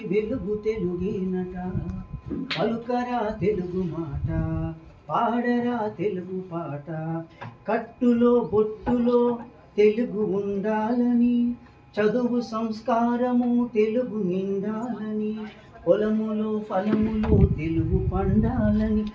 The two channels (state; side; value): identical; both; correlation 1.00